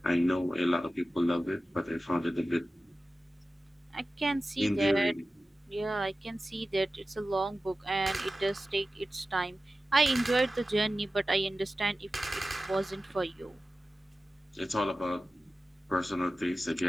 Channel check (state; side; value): normal; both; correlation 0.95